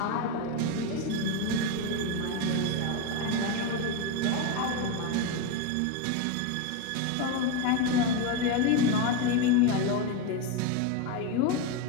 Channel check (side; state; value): both; different; correlation 0.03